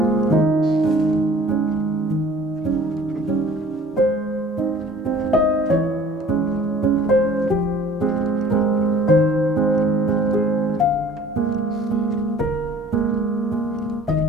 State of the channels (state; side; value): normal; both; correlation 0.50